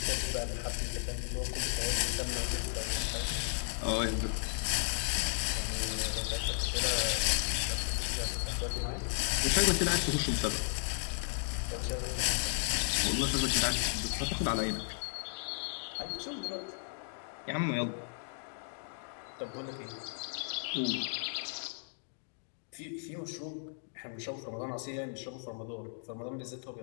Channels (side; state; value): right; silent; digital silence